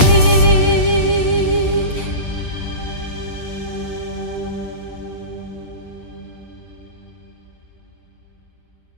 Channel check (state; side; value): late; right; 8.6 ms